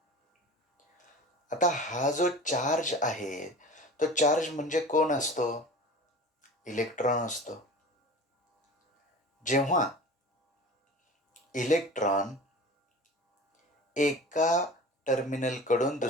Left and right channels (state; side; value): normal; both; correlation 0.38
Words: आता हा जो चार्ज आहे, तो चार्ज म्हणजे कोण असतो? इलेक्ट्रॉन असतो. जेव्हा इलेक्ट्रॉन एका टर्मिनलकडून